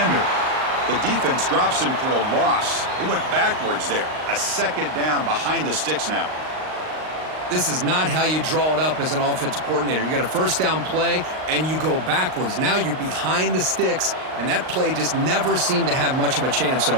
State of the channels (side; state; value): left; late; 38 ms